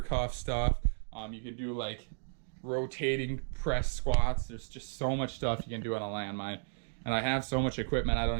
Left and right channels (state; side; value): silent; left; digital silence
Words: cuff stuff. You can do like rotating press squats. There's just so much stuff you can do on a landmine. And I have so much equipment, I